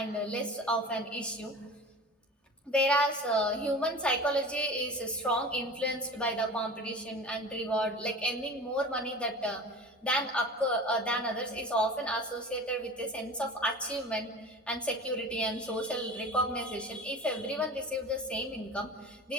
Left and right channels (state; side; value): normal; both; correlation 0.37